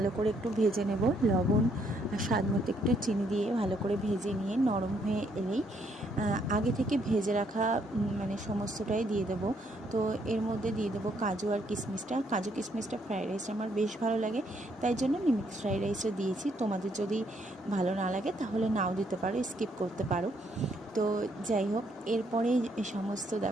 করে একটু ভেজে নেব। লবণ আর স্বাদ মতো একটু চিনি দিয়ে ভালো করে ভেজে নিয়ে নরম হয়ে এলেই আগে থেকে ভেজে রাখা সমস্তটাই দিয়ে দেবো। তো এর মধ্যে দিয়ে দেবো কাজু আর কিশমিশটা। কাজু কিশমিশটা ফ্রাইড রাইস আমার বেশ ভালো লাগে, তাই জন্য আমি মিক্স ফ্রাইড রাইসও দিয়েছি। তোমাদের যদি ভালো না লাগে তাহলে নাও দিতে পারো, স্কিপ করতে পারো। তো যাই হোক, এরপরে সমস্ত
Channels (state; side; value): normal; both; correlation 0.71